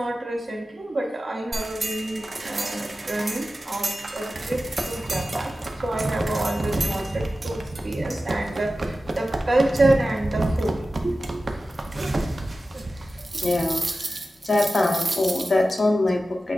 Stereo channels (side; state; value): both; normal; correlation 0.94